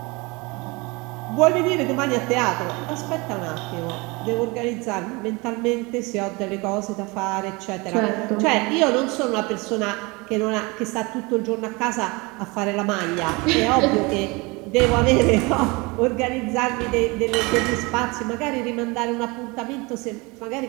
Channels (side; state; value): left; quieter; 26.0 dB